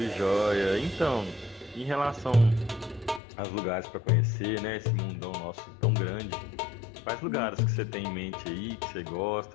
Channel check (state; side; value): drops out; right; at 3.2 s